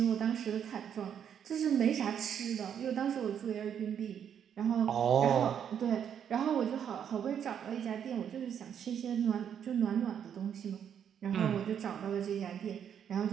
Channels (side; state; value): left; quieter; 8.6 dB